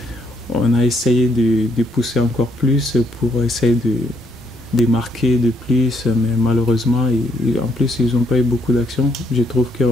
on a essayé de pousser encore plus pour essayer de marquer de plus, mais malheureusement, en plus, ils n'ont pas eu beaucoup d'actions. Je trouve que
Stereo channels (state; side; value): normal; both; correlation 0.71